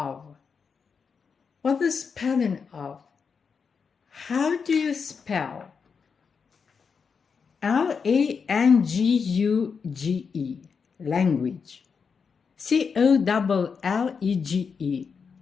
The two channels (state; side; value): quieter; right; 5.8 dB